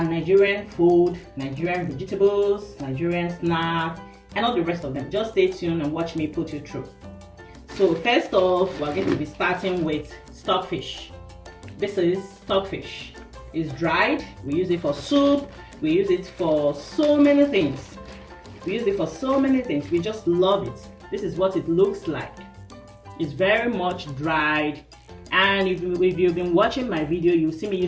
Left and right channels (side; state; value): both; identical; correlation 1.00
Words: Nigerian food, Nigerian vegetables, Nigerian snacks, and all the rest of them. Just stay tuned and watch me put you through. So first off, we're going to be starting with stockfish. This is stockfish. It's dried. We use it for soup. We use it for so many things. We just love it. This is what it looks like. It's very much dried. And if you've been watching my video, you'll see me